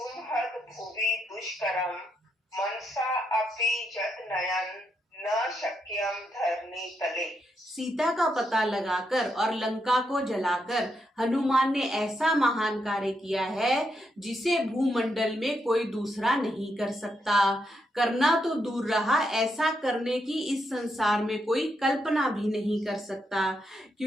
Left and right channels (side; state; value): both; normal; correlation 0.80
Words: भुवि दुष्करं मनसा अपि यत्नयन् न शक्यं धरणी तले। सीता का पता लगाकर और लंका को जलाकर हनुमान ने ऐसा महान कार्य किया है जिसे भूमंडल में कोई दूसरा नहीं कर सकता। करना तो दूर रहा, ऐसा करने की इस संसार में कोई कल्पना भी नहीं कर सकता।